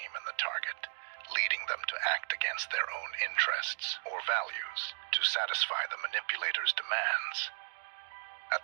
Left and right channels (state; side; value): silent; left; digital silence